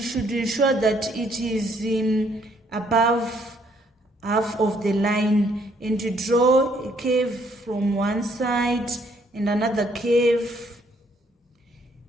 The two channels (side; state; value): both; normal; correlation 0.67